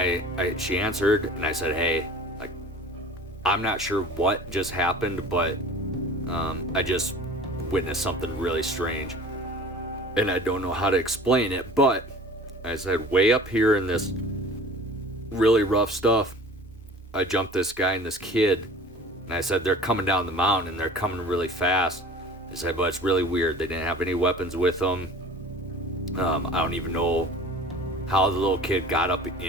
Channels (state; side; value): normal; both; correlation 0.43